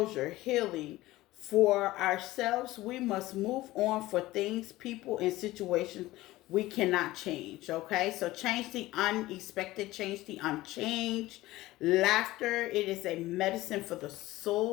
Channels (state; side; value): quieter; right; 17.6 dB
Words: healing, For ourselves, we must move on for things, people, and situations we cannot change. Okay, so change the unexpected, change the unchanged. Laughter, it is a medicine for the